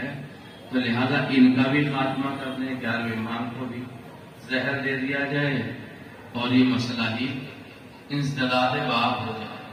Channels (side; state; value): both; identical; correlation 1.00